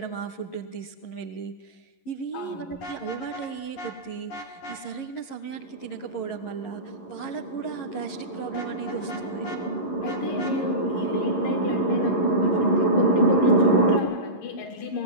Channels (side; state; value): right; late; 11 ms